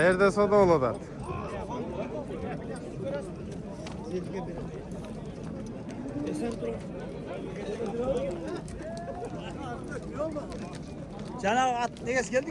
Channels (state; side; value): identical; both; correlation 1.00